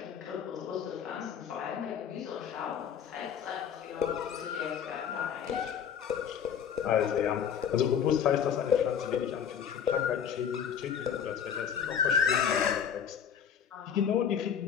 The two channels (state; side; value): quieter; right; 8.0 dB